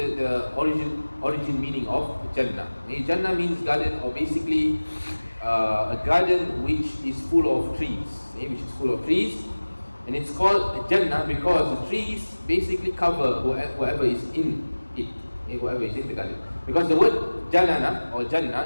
origin meaning of Jannah. Okay, Jannah means garden, or basically a garden which is full of trees. Okay, which is full of trees, and it's called Jannah because the trees basically cover whoever is in it. Okay, whoever is in the garden. Because the word Jannana or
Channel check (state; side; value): inverted; both; correlation -1.00